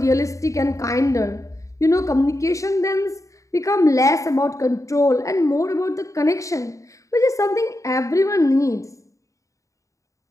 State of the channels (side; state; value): right; late; 0.16 ms